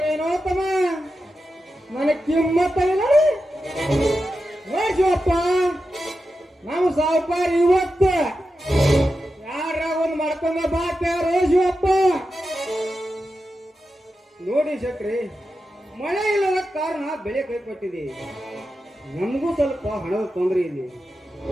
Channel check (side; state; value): both; normal; correlation 0.90